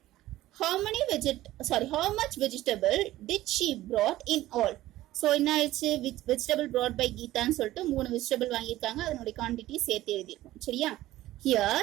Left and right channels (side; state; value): left; quieter; 15.6 dB